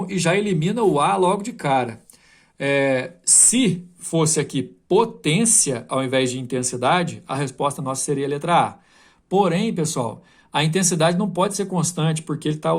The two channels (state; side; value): identical; both; correlation 1.00